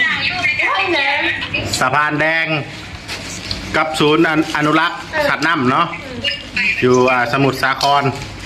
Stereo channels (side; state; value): both; identical; correlation 1.00